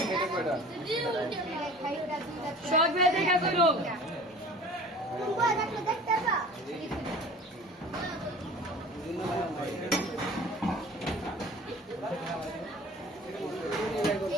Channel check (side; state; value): both; normal; correlation 0.44